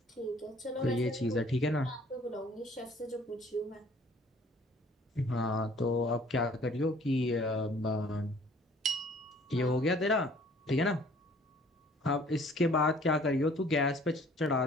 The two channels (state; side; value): normal; both; correlation 0.55